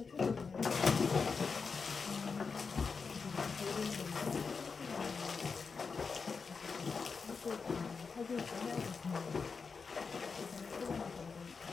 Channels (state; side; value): quieter; right; 5.1 dB